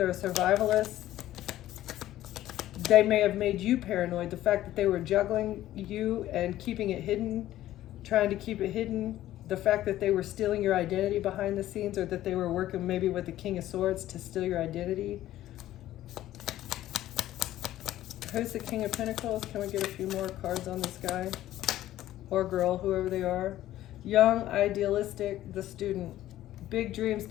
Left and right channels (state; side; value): quieter; right; 14.0 dB